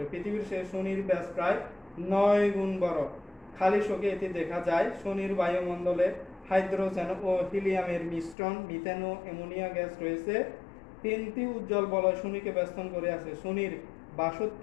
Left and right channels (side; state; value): right; drops out; at 8.3 s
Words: পৃথিবীর সেই শনির ব্যাস প্রায় 9 গুণ বড়। খালি চোখে এটি দেখা যায়। শনির বায়ুমণ্ডলে হাইড্রোজেন ও হিলিয়ামের মিশ্রণ, মিথেন ও অ্যামোনিয়া গ্যাস রয়েছে। 3টি উজ্জ্বল বলয় শনিকে বেষ্টন করে আছে। শনির